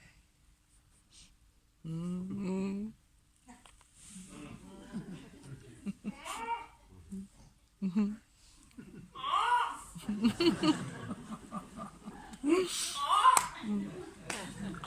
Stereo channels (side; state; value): both; identical; correlation 1.00